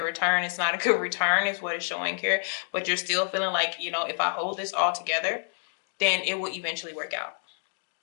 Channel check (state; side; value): silent; right; 59 dB below the other